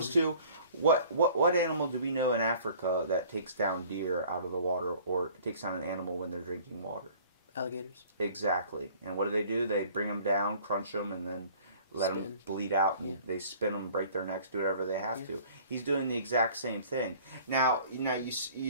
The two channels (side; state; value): both; inverted; correlation -0.51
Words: to... What animal do we know in Africa that takes down deer out of the water or takes down an animal when they're drinking water? Alligators. Exactly. And what do? They bring them down, crunch them, and then let them bleed out, and they spin them, break their necks, do whatever they have to. He's doing the exact same thing. Now you